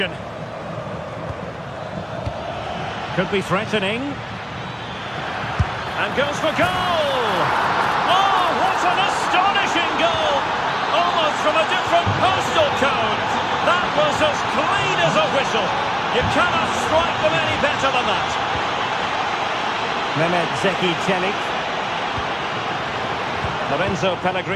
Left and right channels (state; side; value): identical; both; correlation 1.00